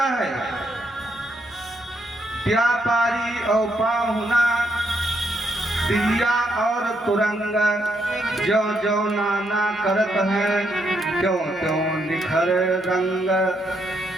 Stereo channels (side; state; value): both; normal; correlation 0.77